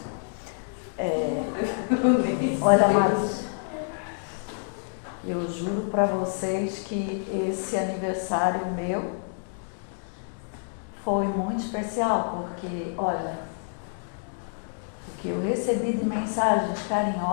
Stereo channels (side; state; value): right; silent; digital silence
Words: Olha, mas eu juro para vocês que esse aniversário meu foi muito especial, porque, olha, o que eu recebi de mensagens